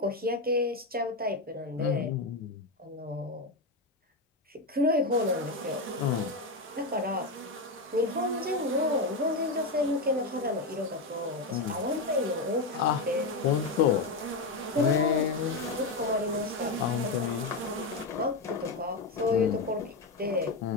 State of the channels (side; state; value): right; quieter; 3.3 dB